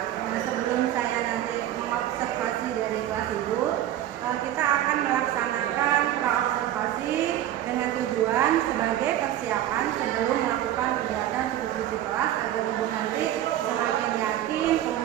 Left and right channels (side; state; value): left; quieter; 12.5 dB